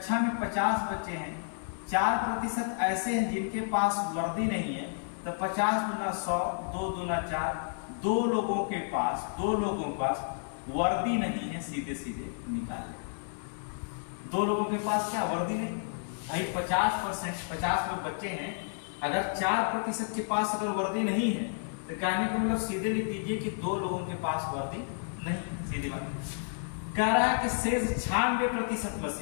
में 50 बच्चे हैं, 4% ऐसे हैं जिनके पास वर्दी नहीं है, तो 50 दूना 100, 2 दूना 4, दो लोगों के पास वर्दी नहीं है, सीधे सीधे निकाल ले। 2 लोगों के पास क्या वर्दी नहीं भाई, 50% 50 लोग बच्चे हैं, अगर 4% के पास अगर वर्दी नहीं है तो कहने का मतलब सीधे लिख दीजिए कि 2 लोगों के पास वर्दी नहीं, सीधी बात। कह रहा है कि शेष 96% में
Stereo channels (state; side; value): silent; right; 57 dB below the other